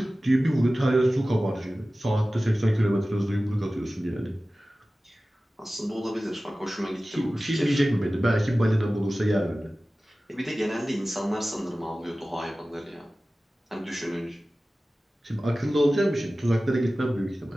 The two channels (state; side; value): normal; both; correlation 0.96